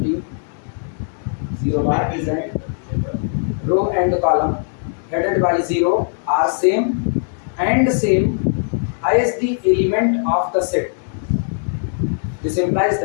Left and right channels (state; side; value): silent; right; 66 dB below the other